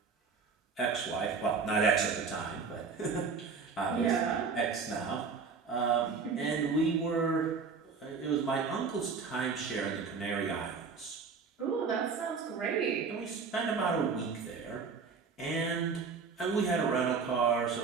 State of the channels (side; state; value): left; quieter; 5.2 dB